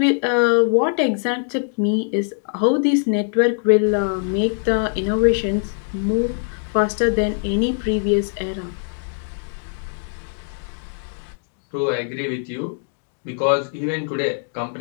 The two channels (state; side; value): silent; right; digital silence